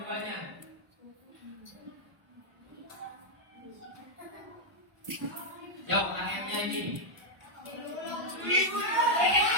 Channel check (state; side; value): late; left; 1.0 ms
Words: Yuk, ayatnya ini.